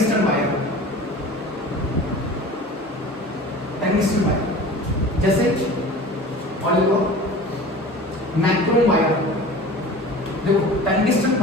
वायर, जैसे मैक्रोम वायर। देखो टंगस्टन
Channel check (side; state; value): both; normal; correlation 0.39